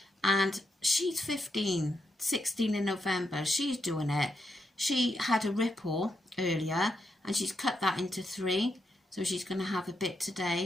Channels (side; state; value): both; normal; correlation 0.82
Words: And she's 15, 16 in November. She's doing it. She had a ripple earlier, and she's cut that into 3. So she's going to have a bit